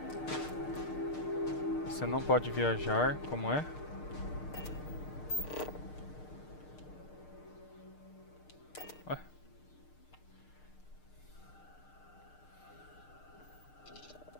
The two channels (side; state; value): right; late; 6.6 ms